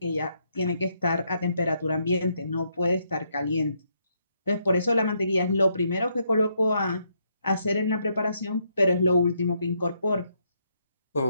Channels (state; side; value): inverted; both; correlation -0.75